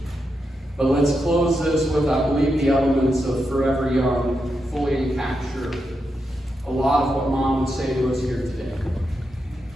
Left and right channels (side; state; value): both; normal; correlation 0.85